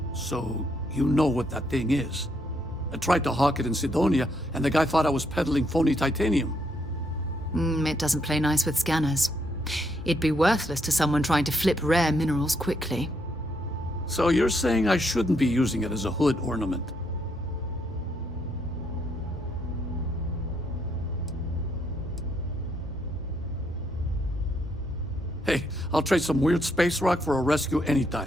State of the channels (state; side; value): normal; both; correlation 0.75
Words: So, you know what that thing is? I tried to hawk it in Sidonia, and the guy thought I was peddling phony titanium. It doesn't play nice with scanners. It'd be worthless to someone trying to flip rare minerals quickly. So you're saying I shouldn't be using it as a hood ornament? Hey, I'll trade some weird space rock for a rescue